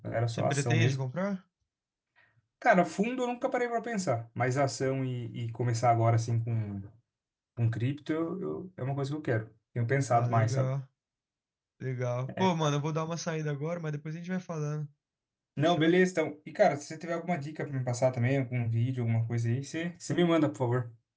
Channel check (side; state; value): both; identical; correlation 1.00